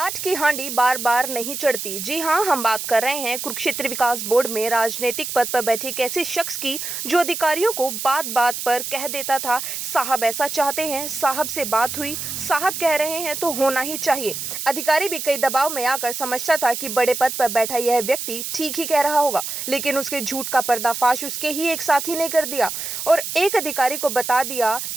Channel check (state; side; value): noise; right; hiss, 5 dB below the sound